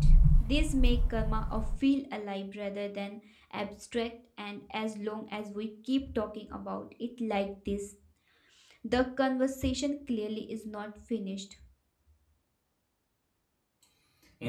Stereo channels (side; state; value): both; identical; correlation 1.00